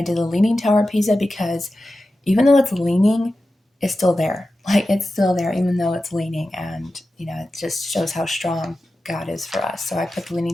did a leaning tower Pisa because even though it's leaning, it's still there. Like it's still there even though it's leaning, and it just shows how strong God is for us. So I put the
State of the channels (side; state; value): both; normal; correlation 0.93